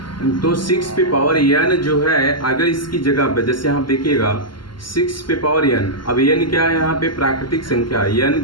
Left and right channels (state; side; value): late; right; 0.72 ms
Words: तो 6 पे पावर n जो है, अगर इसकी जगह पे जैसे आप देखिएगा 6 पे पावर n, अब n क्या है यहाँ पे, प्राकृतिक संख्या। n